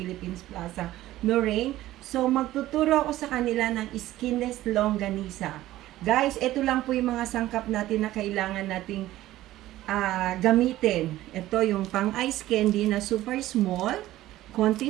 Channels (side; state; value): left; quieter; 15.2 dB